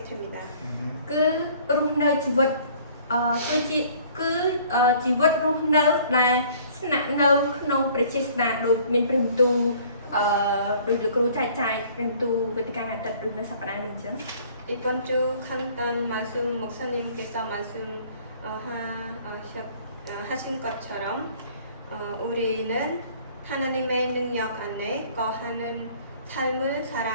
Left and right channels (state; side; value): inverted; both; correlation -0.54